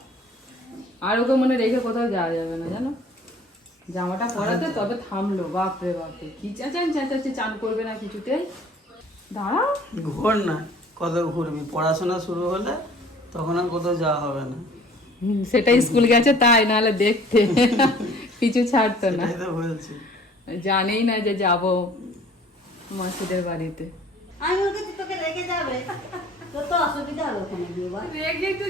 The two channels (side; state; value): both; normal; correlation 0.52